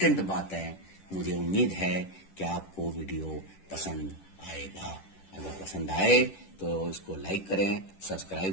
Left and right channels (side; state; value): right; late; 10 ms